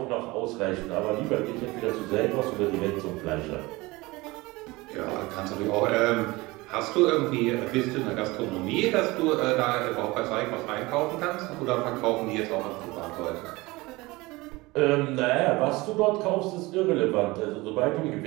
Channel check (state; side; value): quieter; left; 21.9 dB